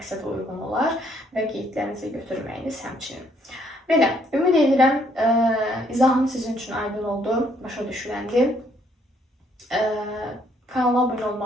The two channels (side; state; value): both; normal; correlation 0.68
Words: uyğun olar və qeydlərinizi götürməyiniz həmçinin. Belə, ümid edirəm, izahım sizin üçün aydın oldu, başa düşüləndi. Kanala abunə